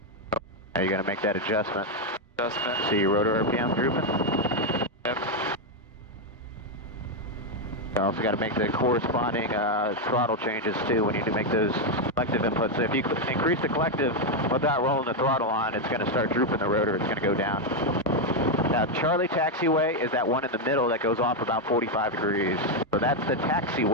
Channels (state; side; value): normal; both; correlation 0.03